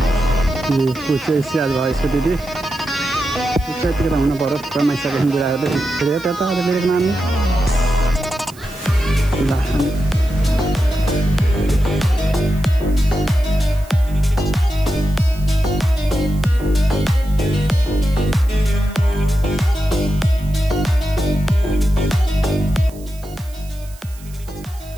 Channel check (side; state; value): right; noise; hiss, 22 dB below the sound